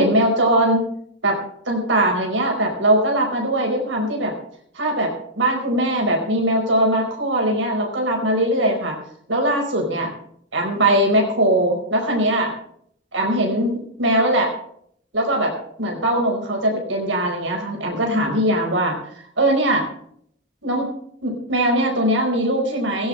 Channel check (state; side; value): normal; both; correlation -0.15